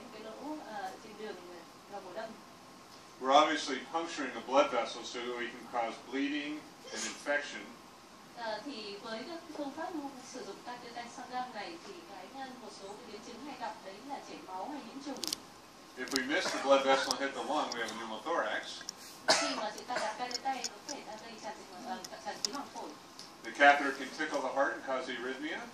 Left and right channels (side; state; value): both; identical; correlation 1.00